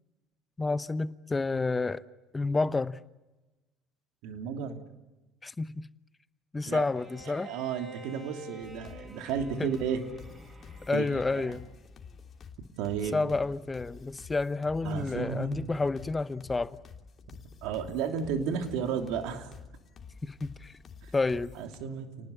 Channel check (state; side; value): normal; both; correlation 0.74